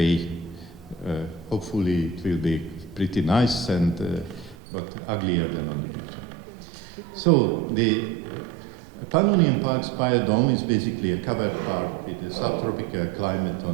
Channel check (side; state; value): left; drops out; at 4.5 s